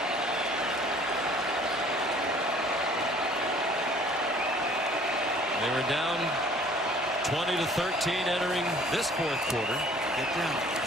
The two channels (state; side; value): normal; both; correlation 0.54